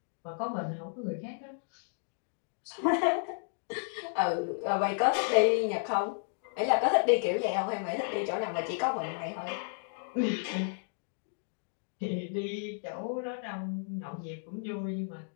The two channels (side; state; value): right; silent; digital silence